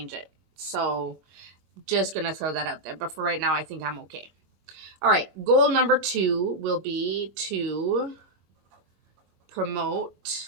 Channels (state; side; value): late; left; 25 ms